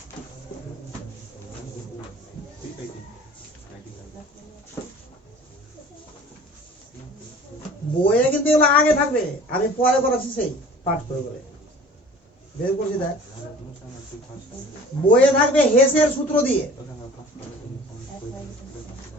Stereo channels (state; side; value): normal; both; correlation 0.46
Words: কিন্তু এগুলো আগে থাকবে, আমি পরে করাচ্ছি সেই পাঠ করে করে বের করছি। দেখ বইয়ে থাকবে হেসের সূত্র দিয়ে,